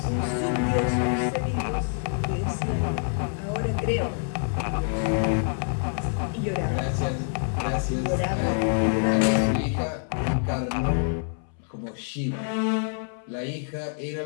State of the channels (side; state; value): right; silent; 61 dB below the other